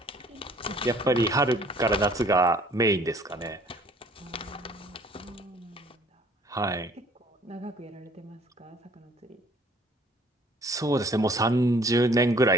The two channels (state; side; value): normal; both; correlation 0.56